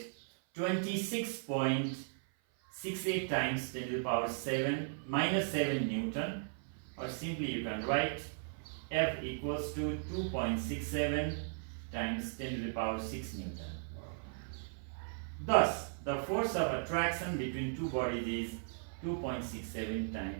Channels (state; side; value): silent; left; 53 dB below the other